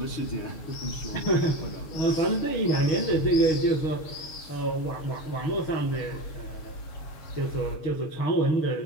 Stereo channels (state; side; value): late; right; 7.2 ms